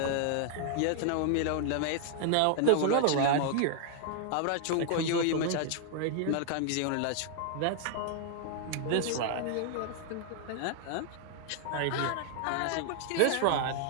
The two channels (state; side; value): different; both; correlation 0.00